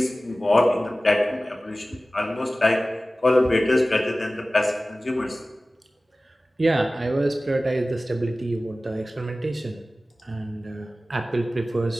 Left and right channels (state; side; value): normal; both; correlation 0.97